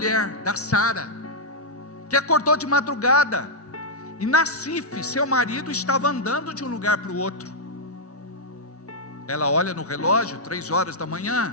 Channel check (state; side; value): normal; both; correlation -0.06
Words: da Sara, que acordou de madrugada, e Nassif, seu marido, estava andando de um lugar para o outro. Ela olha no relógio, 3 horas da